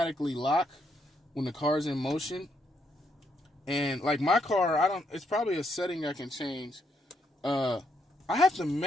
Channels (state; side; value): normal; both; correlation 0.76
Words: lock when the car's in motion. And like my car, it's probably a setting I can change. I have to